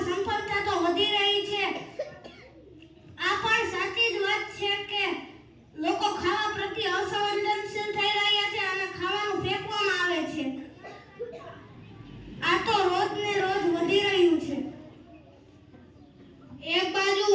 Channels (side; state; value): both; identical; correlation 1.00